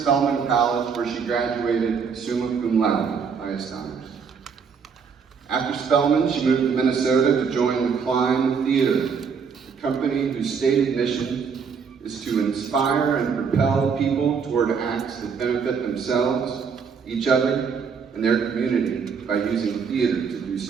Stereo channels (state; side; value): quieter; left; 6.1 dB